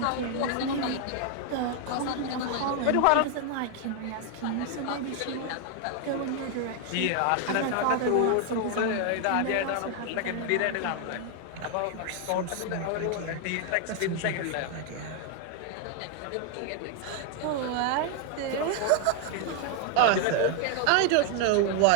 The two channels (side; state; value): both; different; correlation 0.00